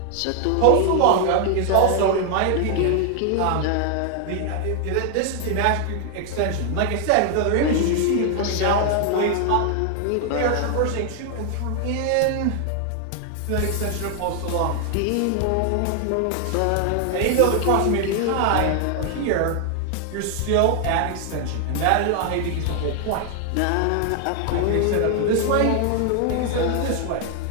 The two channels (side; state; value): both; different; correlation 0.00